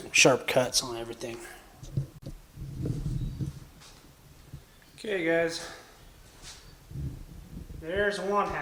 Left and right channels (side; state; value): both; identical; correlation 1.00